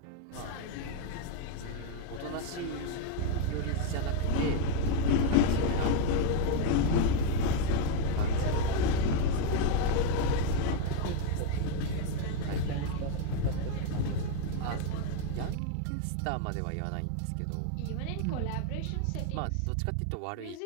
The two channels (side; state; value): both; different; correlation 0.01